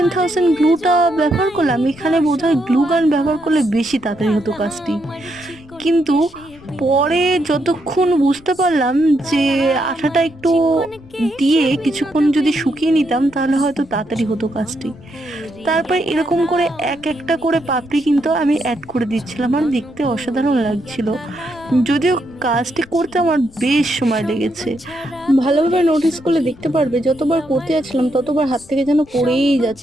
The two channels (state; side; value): noise; left; rumble, 24 dB below the sound